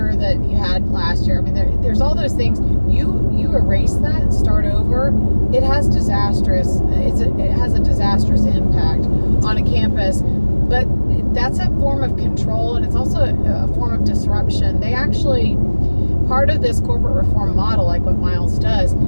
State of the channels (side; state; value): both; inverted; correlation -1.00